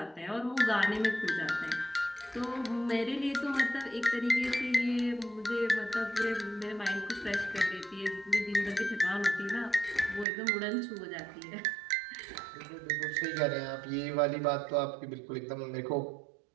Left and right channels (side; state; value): left; drops out; at 10.2 s